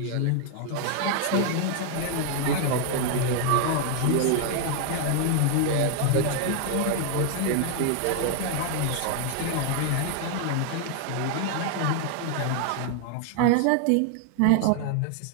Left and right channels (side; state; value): both; different; correlation 0.00